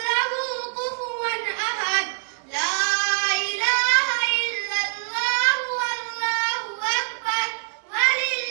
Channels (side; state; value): left; silent; digital silence